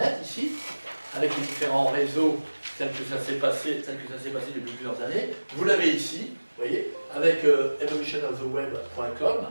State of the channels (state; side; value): inverted; both; correlation -1.00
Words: ici, avec les différents réseaux tels que ça s'est passé depuis plusieurs années, vous l'avez ici, vous voyez, avec evolutionoftheweb.com,